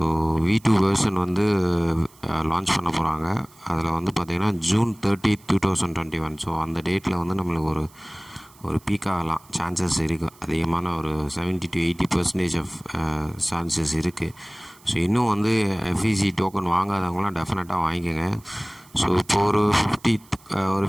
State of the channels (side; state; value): right; noise; hiss, 27 dB below the sound